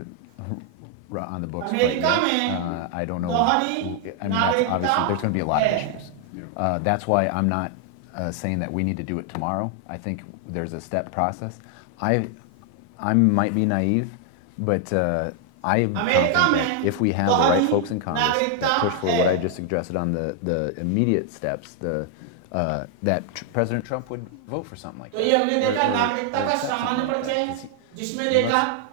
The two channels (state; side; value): different; both; correlation 0.00